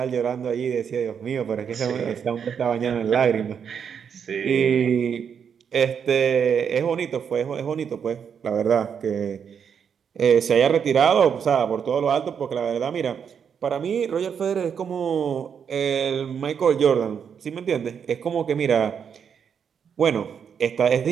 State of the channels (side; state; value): left; quieter; 7.3 dB